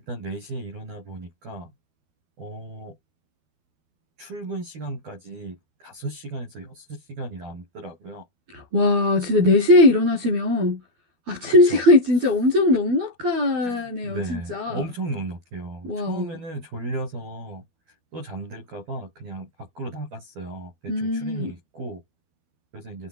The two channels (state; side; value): late; left; 12 ms